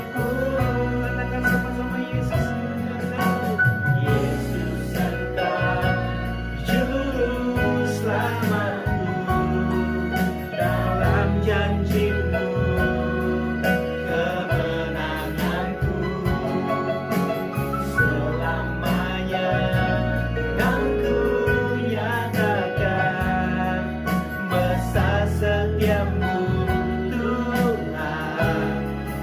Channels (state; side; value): identical; both; correlation 1.00